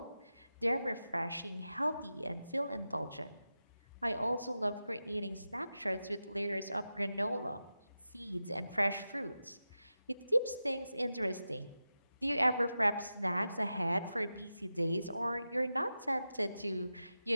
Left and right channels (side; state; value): both; inverted; correlation -0.92